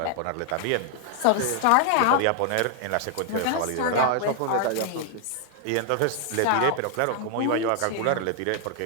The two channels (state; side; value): different; both; correlation 0.00